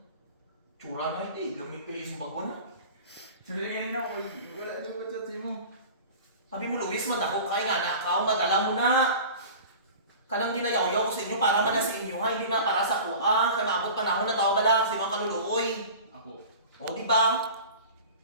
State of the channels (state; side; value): inverted; both; correlation -0.38